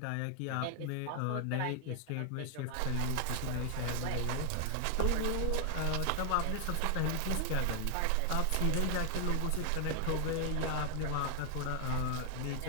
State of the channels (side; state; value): both; different; correlation 0.00